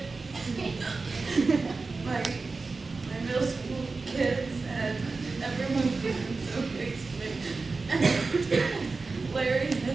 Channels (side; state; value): left; quieter; 4.0 dB